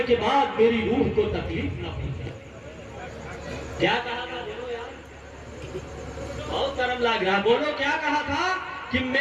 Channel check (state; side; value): identical; both; correlation 1.00